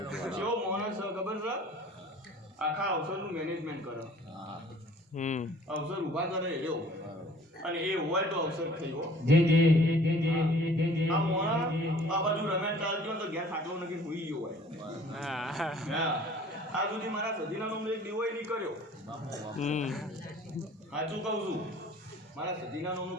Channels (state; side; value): normal; both; correlation 0.51